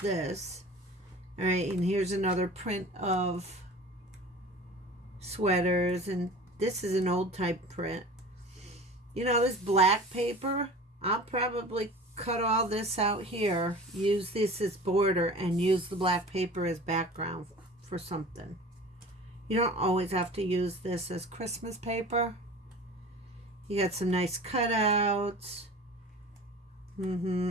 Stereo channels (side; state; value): both; normal; correlation 0.39